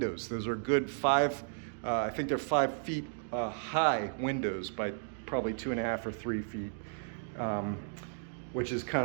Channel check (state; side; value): silent; left; digital silence